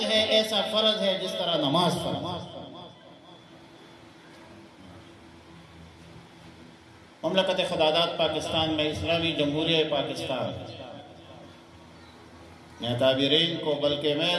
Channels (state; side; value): identical; both; correlation 1.00